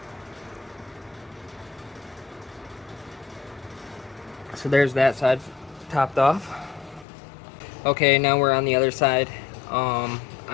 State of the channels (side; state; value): right; drops out; at 7.1 s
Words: So there's that side topped off. Okay, now we're on the other side.